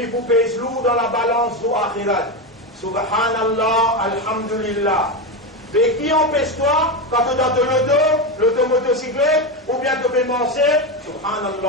vous pèse lourd dans la balance du akhirat. Subhanallah, alhamdulillah. Mais qui empêche-toi, quand tu es dans l'automotocyclette, ou bien tu peux manger,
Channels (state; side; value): normal; both; correlation 0.14